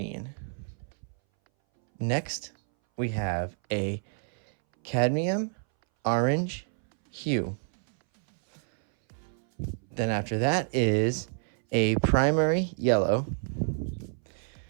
Next, we have a cadmium orange hue. Then after that is a primary yellow.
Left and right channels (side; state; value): left; silent; 59 dB below the other